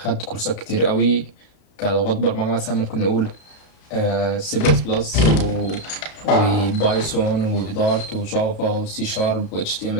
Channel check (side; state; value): right; late; 32 ms